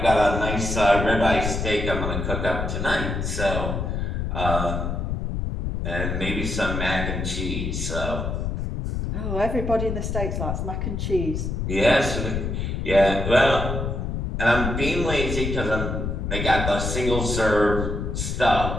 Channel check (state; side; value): noise; left; rumble, 2 dB below the sound